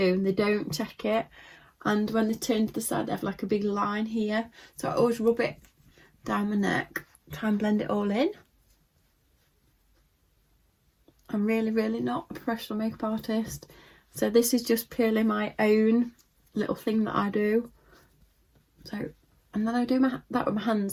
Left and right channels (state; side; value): identical; both; correlation 1.00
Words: and they don't check it. And when they turn to the side, they have like a big line here. So I always rub it down my neck, try and blend it all in. I'm really, really not a professional makeup artist. So this is just purely my own little thing that I do. So, and then I do that with my